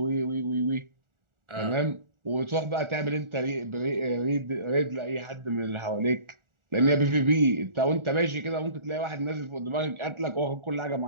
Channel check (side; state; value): left; late; 1.4 ms